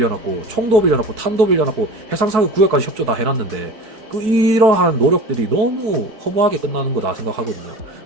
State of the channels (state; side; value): late; left; 4.6 ms